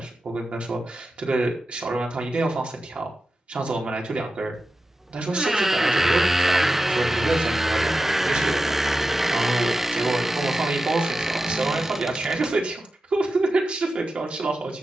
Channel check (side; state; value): both; normal; correlation 0.92